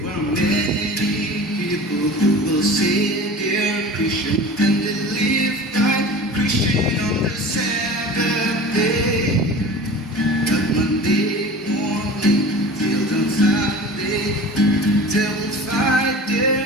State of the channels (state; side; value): normal; both; correlation 0.37